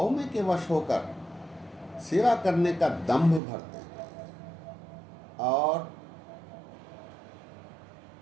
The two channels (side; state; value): left; drops out; at 3.4 s